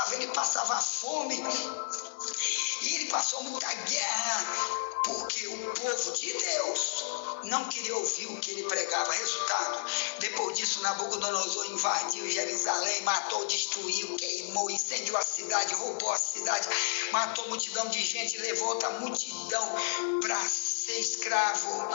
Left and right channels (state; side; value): silent; right; digital silence